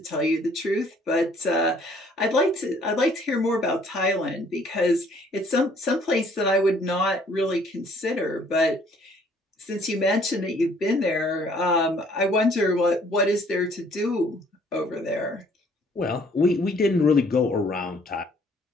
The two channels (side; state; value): both; normal; correlation 0.60